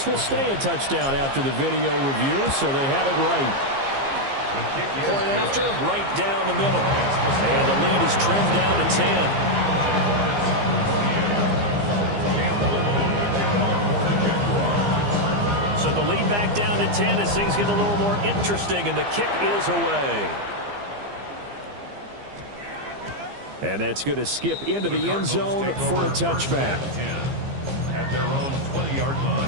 will stay a touchdown after the video review, so they had it right. Point after, right down the middle. And the lead is trimmed down to 10. So the lead back down to 10 as things get a little more interesting, and the kick is away. And that's going to skip into the end zone for a touchback. At their own 20-yard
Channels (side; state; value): left; late; 15 ms